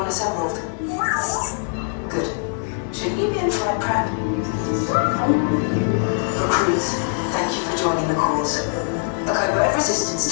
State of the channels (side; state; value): right; silent; 63 dB below the other